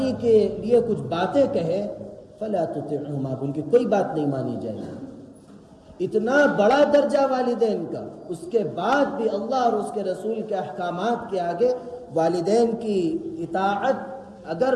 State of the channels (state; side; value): identical; both; correlation 1.00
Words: کے لیے کچھ باتیں کہے، فلا تطعهما، ان کی کوئی بات نہیں مانی جائے گی۔ اتنا بڑا درجہ والدین کا، اس کے بعد بھی اللہ اور اس کے رسول کے احکامات کے آگے والدین کی اطاعت اگر